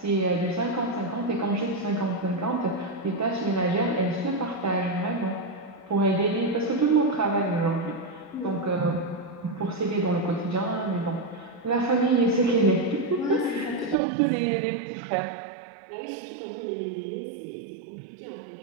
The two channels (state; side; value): drops out; left; at 14.0 s